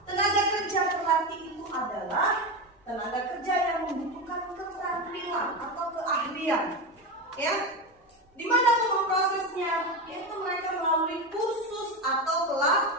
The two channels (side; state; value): both; normal; correlation 0.17